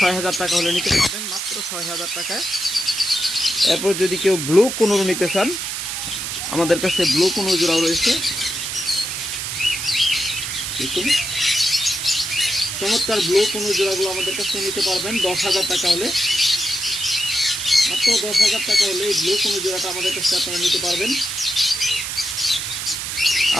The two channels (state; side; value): noise; right; hiss, 4 dB below the sound